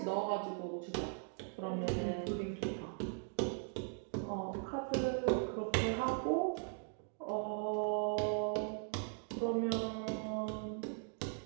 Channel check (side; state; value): left; silent; 52 dB below the other